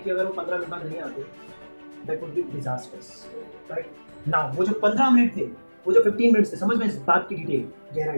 अगर वो 15 मिनट बाद नहीं आते, that would be disasters, right now. वो जो 15 मिनट थे, वो जो 15 मिनट थे, समझ में इस बात की डिटेल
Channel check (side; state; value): both; inverted; correlation -1.00